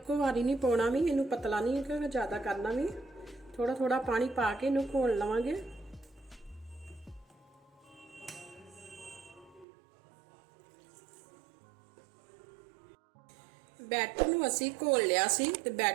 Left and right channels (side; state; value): left; drops out; at 9.7 s